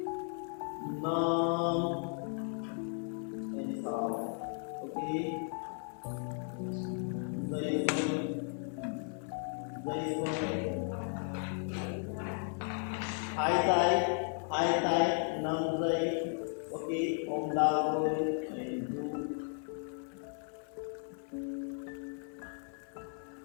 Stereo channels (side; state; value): right; silent; 54 dB below the other